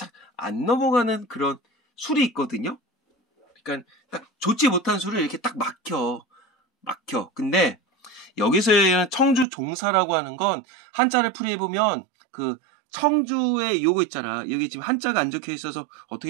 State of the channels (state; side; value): drops out; left; at 9.5 s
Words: 안 넘어가는 그런 술이 있거든요. 그러니까 딱 좋지 못한 술을 이렇게 딱 막혀. 근데 여기서의 청주 종사라고 하는 건 한자를 풀이해보면 그 청주의 요거 있잖아. 여기 지금 한자가 안 적혀 있어서